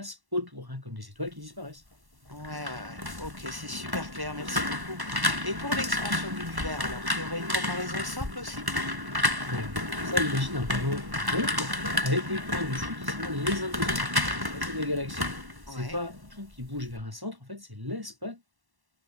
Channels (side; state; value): left; late; 1.1 ms